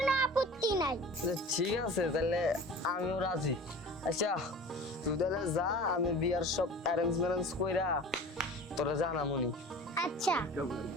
আপত্তি নাই। আচ্ছা, ঠিক আছে তাহলে আমিও রাজি। আচ্ছা তুই তাহলে যা, আমি বিয়ার সব অ্যারেঞ্জ ম্যারেঞ্জ কইরা তোরা জানামুনি। আচ্ছা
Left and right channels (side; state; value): both; normal; correlation 0.39